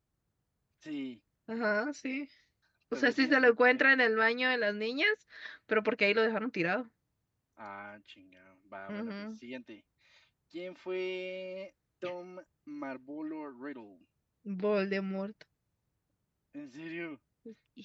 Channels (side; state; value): both; identical; correlation 1.00